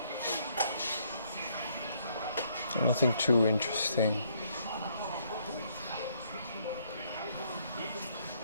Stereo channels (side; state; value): both; inverted; correlation -0.70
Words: Nothing too interesting.